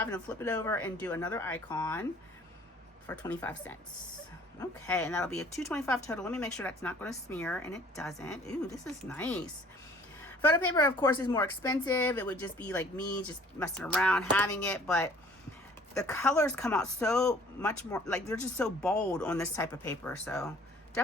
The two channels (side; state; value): both; normal; correlation 0.54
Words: and I'll flip it over and do another icon for 25 cents. Okay, and that'll be a $2.25 total. Let me make sure that's not going to smear, and it doesn't. Ooh, this is nice. Photo paper, of course, is more expensive. It would just be like me just messing around having it, but the colors come out so much more, like they're just so bold on this type of paper. So